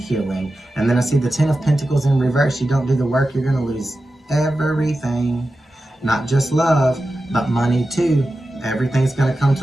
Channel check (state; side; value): normal; both; correlation 0.92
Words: And then I see the 10 of Pentacles in reverse. You don't do the work, you're going to lose everything. Not just love, but money too. Everything's going to come